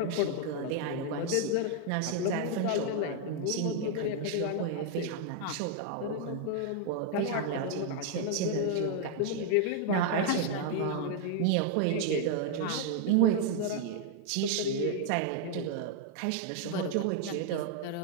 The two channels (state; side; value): different; both; correlation 0.00